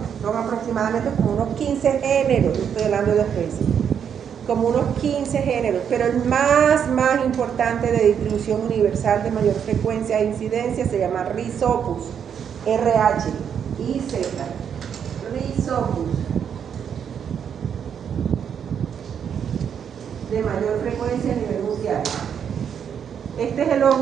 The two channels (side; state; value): left; quieter; 8.0 dB